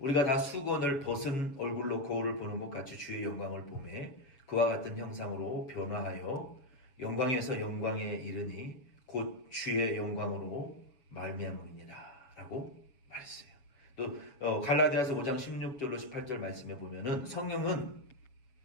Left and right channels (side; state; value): right; late; 7.1 ms